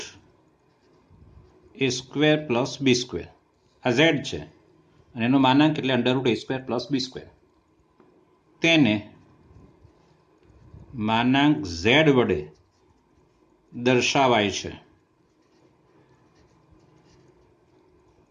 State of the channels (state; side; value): identical; both; correlation 1.00